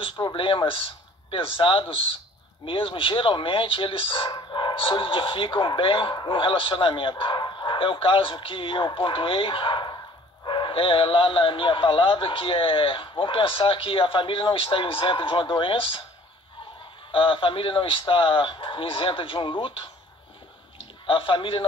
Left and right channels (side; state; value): both; normal; correlation 0.53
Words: problemas pesados mesmo, geralmente eles solidificam bem um relacionamento. É o caso que eu pontuei lá na minha palavra, que vamos pensar que a família não está isenta de uma doença, a família não está isenta de um luto, a família